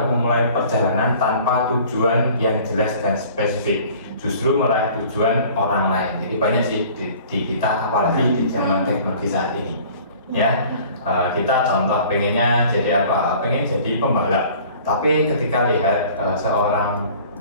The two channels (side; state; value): both; inverted; correlation -0.49